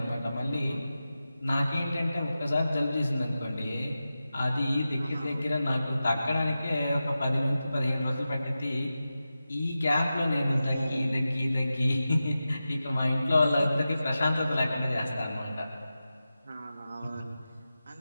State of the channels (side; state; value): both; inverted; correlation -0.93